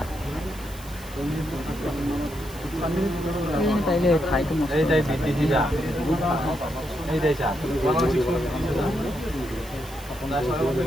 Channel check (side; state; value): right; noise; hiss, 19 dB below the sound